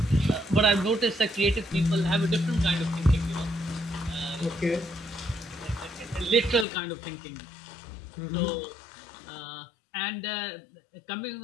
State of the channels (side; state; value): right; drops out; at 6.7 s